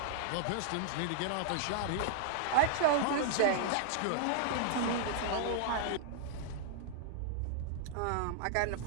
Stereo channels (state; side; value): different; both; correlation -0.01